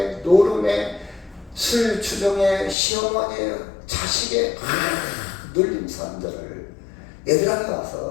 노름에 술 주정에 시어머니에 자식에 눌린 사람들을 얘들한테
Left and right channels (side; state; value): right; drops out; at 2.8 s